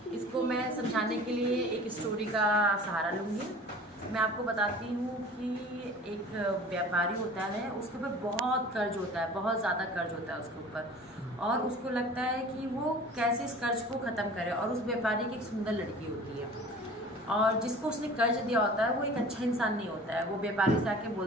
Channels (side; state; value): both; normal; correlation 0.43